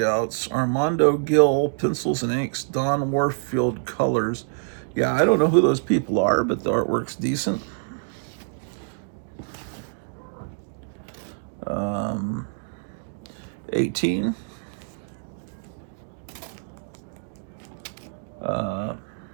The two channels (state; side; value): silent; left; digital silence